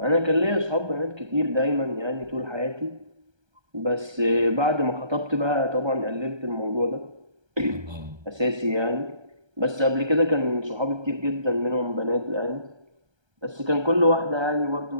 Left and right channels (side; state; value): left; late; 1.3 ms